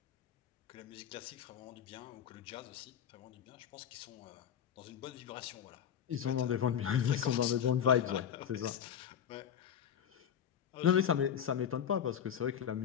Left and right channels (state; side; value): quieter; right; 8.9 dB